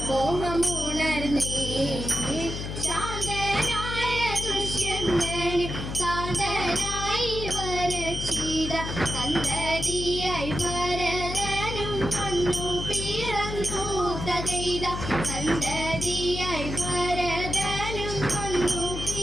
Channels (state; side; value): noise; left; hum, 6 dB below the sound